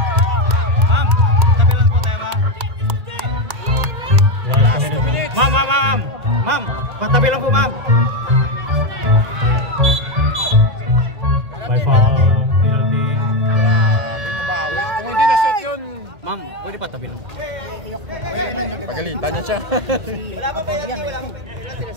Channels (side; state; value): left; late; 1.8 ms